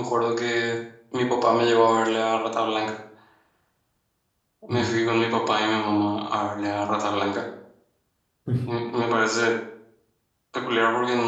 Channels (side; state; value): both; identical; correlation 1.00